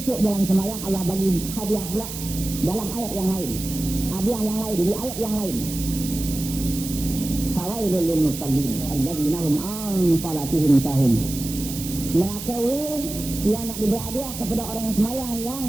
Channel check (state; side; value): noise; right; hiss, 9 dB below the sound